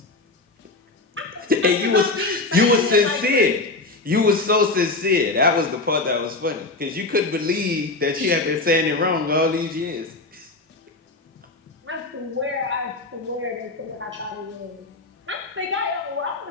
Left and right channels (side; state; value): right; quieter; 3.3 dB